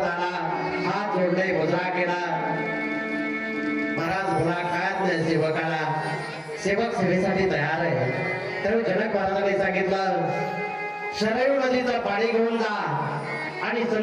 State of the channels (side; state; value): both; identical; correlation 1.00